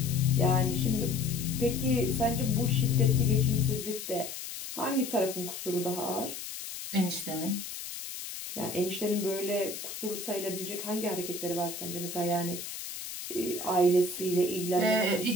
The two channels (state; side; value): noise; left; hiss, 8 dB below the sound